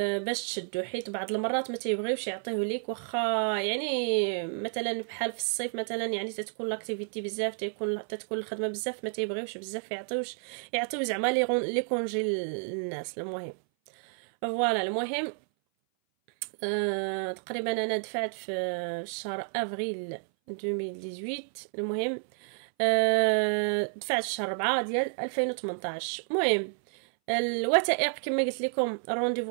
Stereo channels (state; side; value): silent; left; 58 dB below the other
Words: باش تشدو، حيت بعض المرات ما تيبغيوش يعطيه ليك، واخا يعني مثلا بحال في الصيف مثلا يعني تتكون لاكتيفيتي بزاف، تتكون الخدمه بزاف، ما تيبغيوش بزاف يعطيو زعما لي كونجي للناس. المهم فوالا، المهم تقريبا انا دفعت في شهر افريل 2018. المهم دفعت في شهر 4 ديال 2018. المهم الوثائق كما قلت لكم،